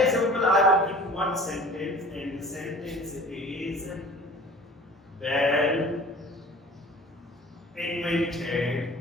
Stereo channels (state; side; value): normal; both; correlation 0.44